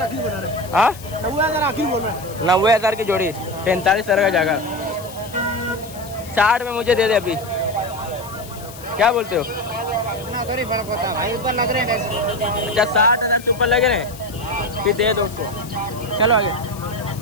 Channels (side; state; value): left; noise; hiss, 17 dB below the sound